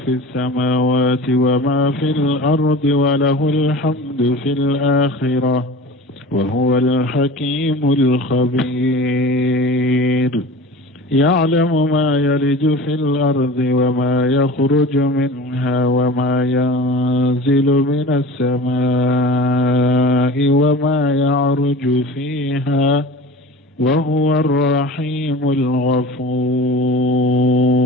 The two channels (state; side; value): normal; both; correlation 0.37